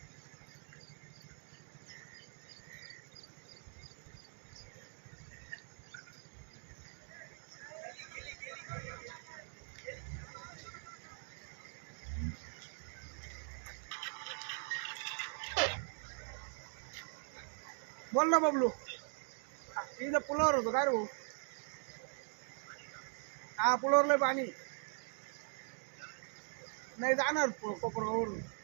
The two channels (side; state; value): left; silent; 50 dB below the other